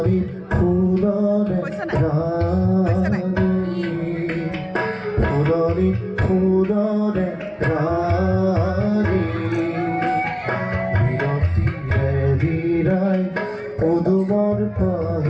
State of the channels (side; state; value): both; identical; correlation 1.00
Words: ফুলরে রানী ফুলরি ফুলরে রানী বিরতিরে বিরাই মধুবর